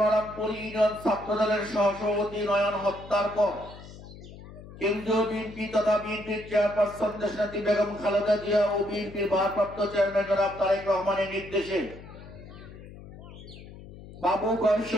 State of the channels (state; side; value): noise; left; hum, 16 dB below the sound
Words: ইউনিয়ন ছাত্র দলের সহসভাপতি নয়ন হত্যার পর কেন্দ্রীয় বিএনপি তথা বিএনপির চেয়ারপারসন দেশনেত্রী বেগম খালেদা জিয়া ও বিএনপির ভারপ্রাপ্ত চেয়ারম্যান জনাব তারেক রহমানের নির্দেশে বাবু গয়েশ